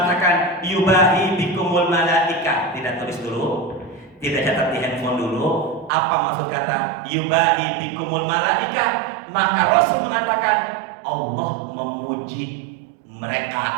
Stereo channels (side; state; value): left; drops out; at 5.9 s